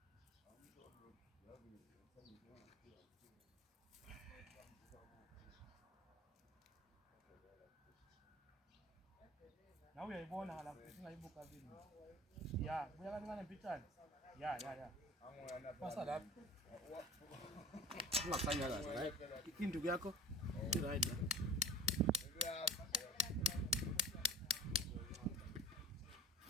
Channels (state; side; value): normal; both; correlation 0.40